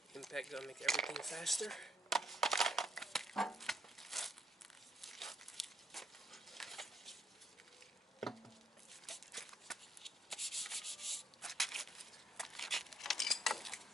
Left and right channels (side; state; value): both; normal; correlation 0.73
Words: Impact gonna make everything faster.